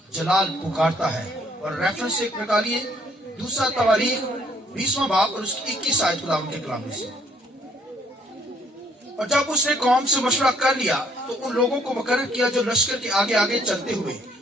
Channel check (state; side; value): normal; both; correlation 0.65